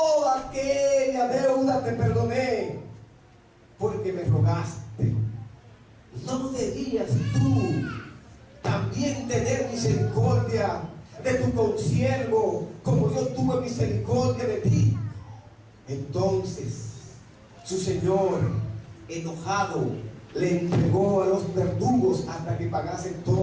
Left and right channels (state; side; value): identical; both; correlation 1.00